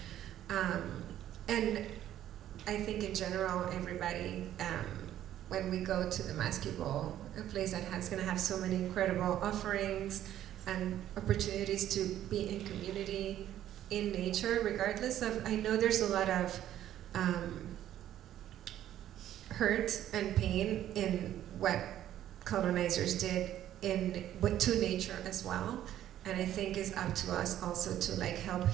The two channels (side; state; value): left; quieter; 12.0 dB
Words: And I think in general, everybody, when we go to the MassQ Ball, a place that is gonna have so many incredible offerings and opportunities to be in community, in nature, regardless of, I know there's a lot of hurt and pain in what colonizers did to nature as well. And I think it's up to us also to like help